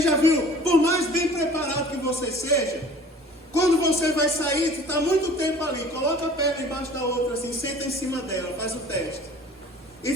já viu, por mais bem preparado que você seja, quando você vai sair, você está muito tempo ali, coloca a perna embaixo da outra, assim, senta em cima dela, faz o teste. E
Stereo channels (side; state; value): both; normal; correlation 0.47